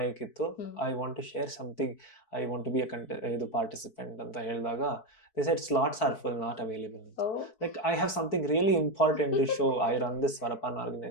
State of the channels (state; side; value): late; right; 4.6 ms